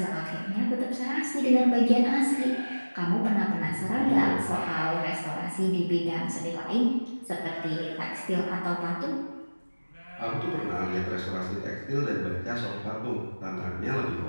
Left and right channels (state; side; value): inverted; both; correlation -1.00